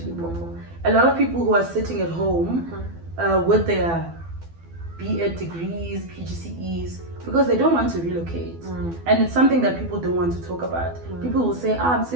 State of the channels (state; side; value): late; left; 12 ms